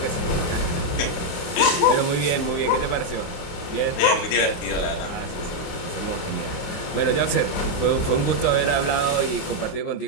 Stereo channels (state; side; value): late; right; 28 ms